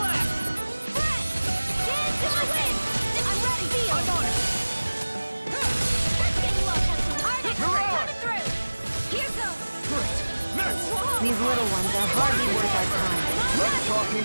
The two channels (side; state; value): both; inverted; correlation -1.00